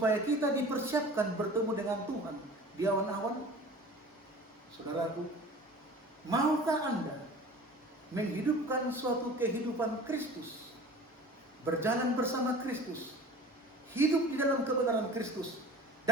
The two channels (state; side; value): normal; both; correlation 0.42